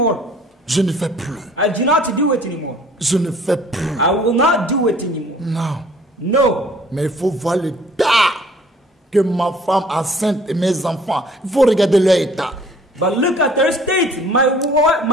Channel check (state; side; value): normal; both; correlation 0.54